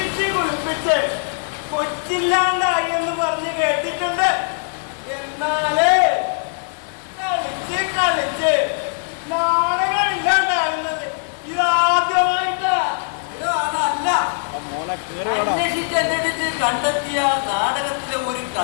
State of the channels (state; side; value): silent; right; digital silence